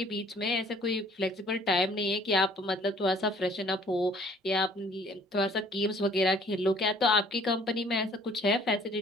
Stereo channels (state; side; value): normal; both; correlation 0.56